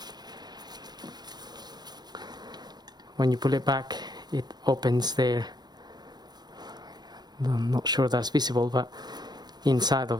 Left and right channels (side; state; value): left; late; 0.20 ms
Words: When you pull it back, it opens there. I'm not sure that's visible, but inside